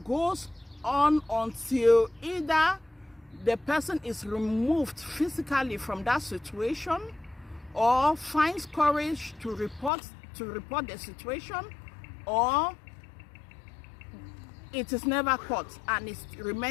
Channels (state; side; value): drops out; right; at 9.9 s